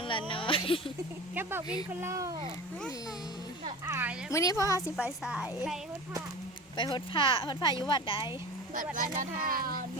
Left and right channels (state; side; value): normal; both; correlation 0.33